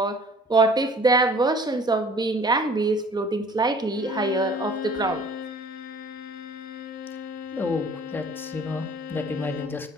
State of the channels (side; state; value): both; normal; correlation 0.51